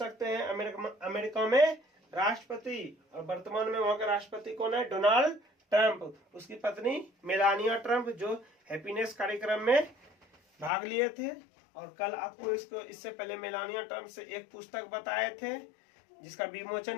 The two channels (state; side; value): drops out; right; at 10.7 s